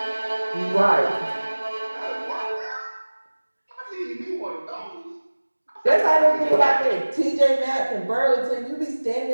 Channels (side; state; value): both; inverted; correlation -1.00